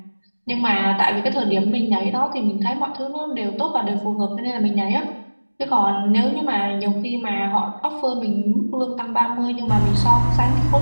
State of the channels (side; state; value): both; inverted; correlation -1.00